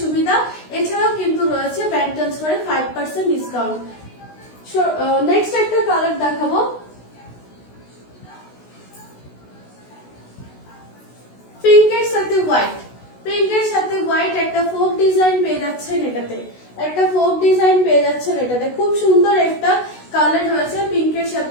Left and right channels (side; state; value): right; late; 16 ms